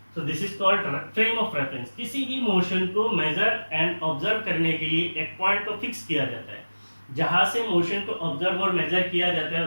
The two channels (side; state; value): both; inverted; correlation -1.00